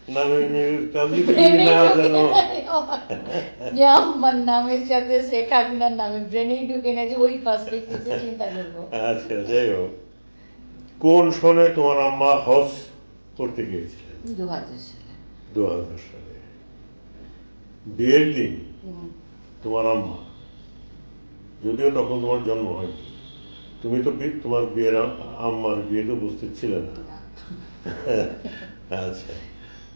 নামের মিল কাজী না জানো? যে আমার নামের সাথে শেখ হাসিনার নামে ব্রেনেই ঢুকে না, যে ওই পার্সপেক্টিভে চিন্তা করবো। আচ্ছা, যাই হোক, কোন সনে তোমার আম্মা হজ করতে গিয়েছিলেন? 2000 সালে। 2000 সালে। বিয়ের দিন তোমার আম্মা, যদিও তখন তোমার জন্ম হয়নি, তুমি তো তোমার বিয়ের আম্মার বিয়েতে উপস্থিত ছিলে না। আচ্ছা,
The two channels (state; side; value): inverted; both; correlation -1.00